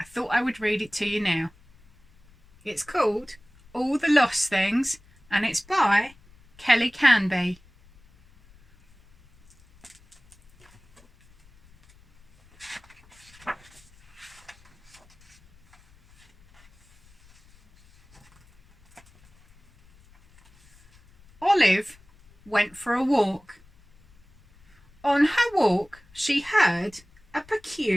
thought I would read it to you now. It's called All the Lost Things and it's by Kelly Canby. Olive went for a walk. On her walk, she heard a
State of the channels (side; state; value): left; noise; rumble, 29 dB below the sound